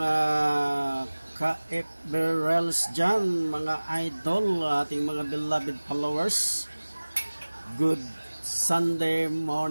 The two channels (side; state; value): both; inverted; correlation -1.00